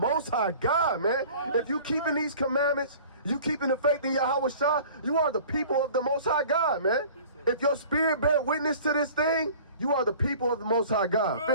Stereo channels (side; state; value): both; inverted; correlation -0.45